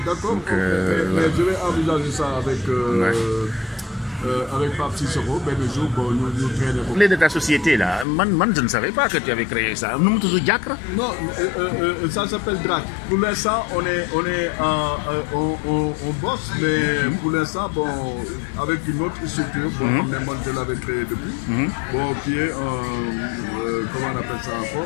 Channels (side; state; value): right; drops out; at 8.1 s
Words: Mais je vais envisager ça avec Pape Cicero, ben le jour où nous traînons. Parler de ta société là, je ne savais pas que tu avais créé ça. Nous sommes toujours Diacre. Non, ça s'appelle DRAC. Pour l'instant, on bosse, mais pour l'instant, bon, avec une autre structure, moi je l'avais créé depuis, bon, qui est comment on appelle ça